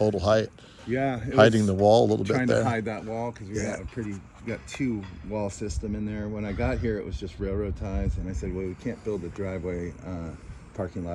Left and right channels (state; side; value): identical; both; correlation 1.00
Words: height. Yeah, Hiding the wall a little bit trying there. to hide that wall because we got two wall system in there. When I got here, it was just railroad ties, and I said, well, we can't build a driveway parking